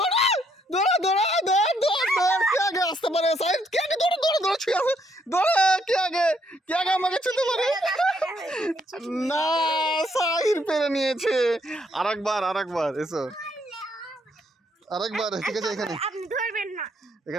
দৌড়া দৌড়া দৌড় দৌড় দৌড় কে আগে আসতে পারে সাইড কে আগে দৌড়া দৌড়া দৌড়া ছুঁয়ে আসে দৌড়া কে আগে আমাকে ছুঁতে পারে না সাইড পেরে নিয়েছে আরেকবার এসো আরেকবার ঠিক আছে এখানে আপনি ধরবেন না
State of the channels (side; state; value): both; normal; correlation 0.71